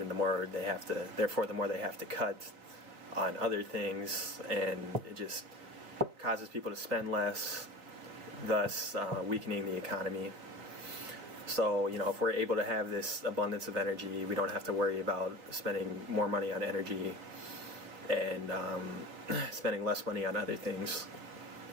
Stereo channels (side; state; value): left; late; 3.6 ms